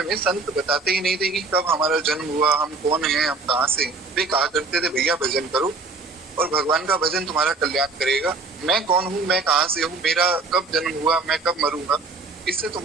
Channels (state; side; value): quieter; left; 3.9 dB